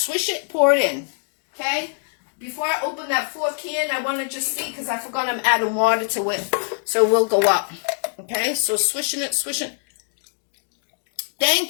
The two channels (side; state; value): right; silent; 61 dB below the other